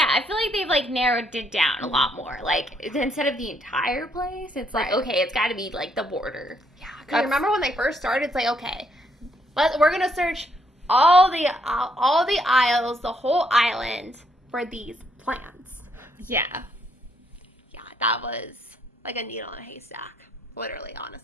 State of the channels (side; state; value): both; normal; correlation 0.72